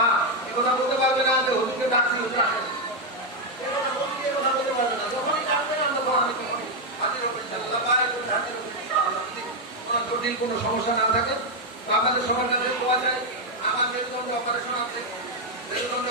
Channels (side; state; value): both; normal; correlation 0.02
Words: এ কথা বলতে পারবে না যে হুজুরকে ডাকছি, হুজুর আসেন, এ কথা বলতে পারবে না। যখনই ডাকবে না, তখন আমি তখনই হাজির হবো ইনশাআল্লাহ। হাজির হবো ইনশাআল্লাহ, যদি কোনো জটিল কোনো সমস্যা না থাকে। তো আমাদের সবার কাছে পাওয়া যায়, আমার মেরুদণ্ড অপারেশন আছে,